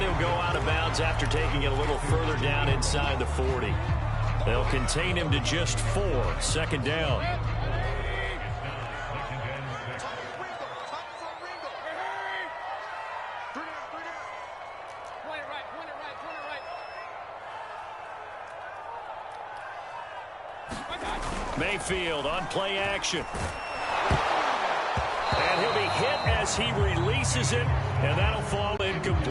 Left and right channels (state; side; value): identical; both; correlation 1.00